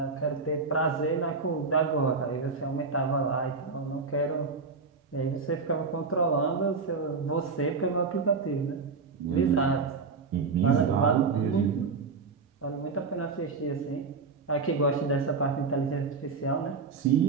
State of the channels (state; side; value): quieter; left; 4.6 dB